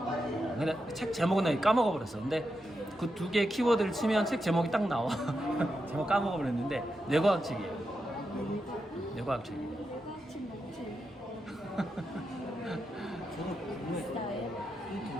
근데 책 제목은 나 까먹어 버렸어. 근데 그 2개의 키워드를 치면 책 제목이 딱 나와. 제목 까먹어 버렸는데 뇌과학 책이에요. 뇌과학 책이에요. 저도 궁금해요. 이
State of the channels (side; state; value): both; normal; correlation 0.87